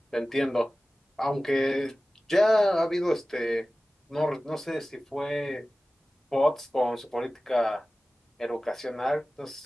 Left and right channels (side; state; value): both; normal; correlation 0.97